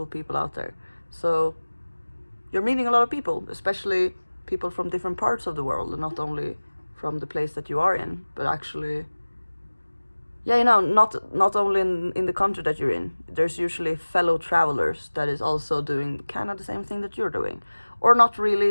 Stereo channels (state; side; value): inverted; both; correlation -1.00